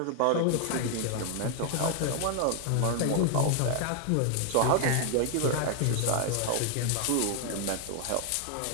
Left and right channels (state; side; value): different; both; correlation 0.00